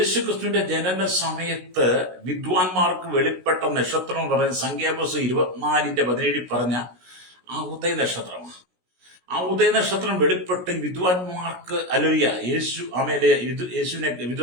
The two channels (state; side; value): late; left; 16 ms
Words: ക്രിസ്തുവിന്റെ ജനന സമയത്ത് വിദ്വാൻമാർക്ക് വെളിപ്പെട്ട നക്ഷത്രം എന്ന് പറയുന്നത് സംഖ്യാപുസ്തകം 24:17 പറഞ്ഞ ആ ഉദയ നക്ഷത്രമാണ്. ആ ഉദയ നക്ഷത്രം വെളിപ്പെട്ട് വിദ്വാൻമാർക്ക്, ഹല്ലേലൂയ,